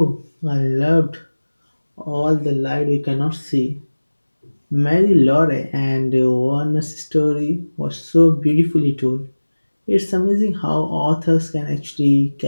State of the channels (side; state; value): both; inverted; correlation -1.00